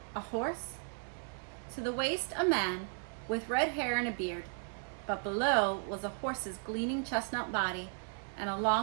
A horse? To the waist, a man with red hair and a beard. But below was a horse's gleaming chestnut body and a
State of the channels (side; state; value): left; silent; 54 dB below the other